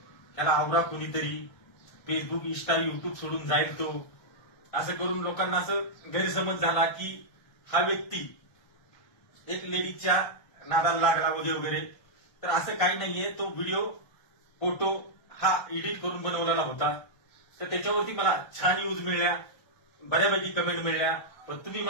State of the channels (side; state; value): right; late; 1.2 ms